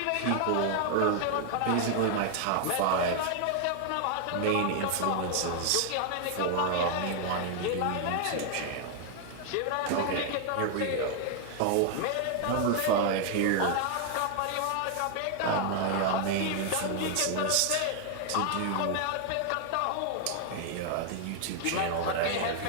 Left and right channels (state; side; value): different; both; correlation 0.00